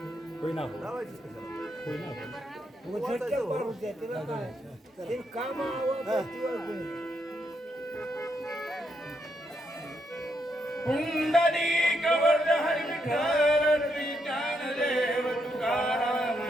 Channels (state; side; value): normal; both; correlation 0.78